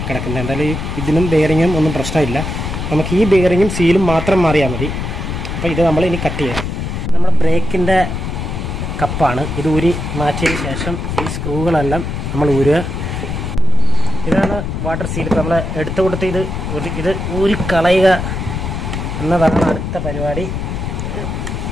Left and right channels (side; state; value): left; noise; rumble, 4 dB below the sound